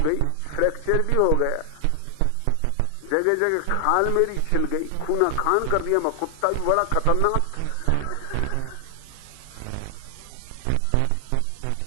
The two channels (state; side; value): different; both; correlation 0.00